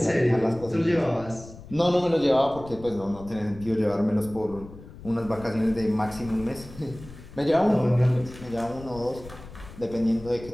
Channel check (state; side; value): noise; left; rumble, 17 dB below the sound